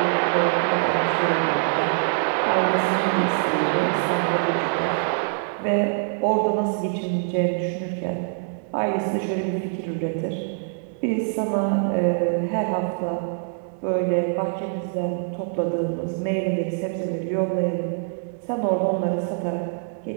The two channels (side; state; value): left; silent; digital silence